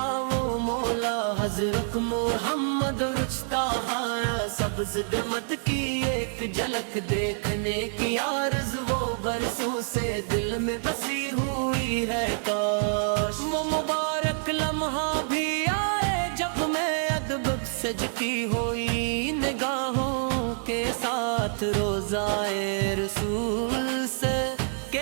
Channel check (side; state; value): left; silent; 60 dB below the other